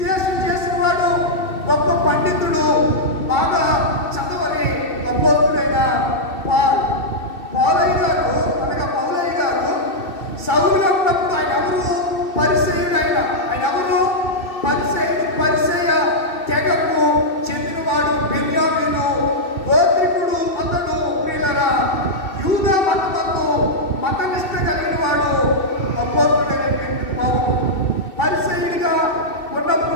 చేసిన వాడు, గొప్ప పండితుడు, బాగా చదవని అపోస్తులైన పౌలయ్య గారు సౌలుగా ఉన్నప్పుడు ఆయన ఎవరు? పరిసయ్యుడు. ఆయన ఎవరు? పరిసయ్య తెగకు చెందినవాడు. బెన్యామీను గోత్రికుడు. అతడు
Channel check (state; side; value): late; right; 2.7 ms